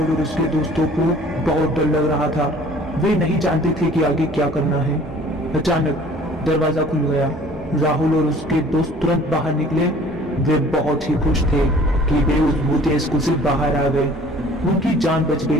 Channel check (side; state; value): both; normal; correlation 0.51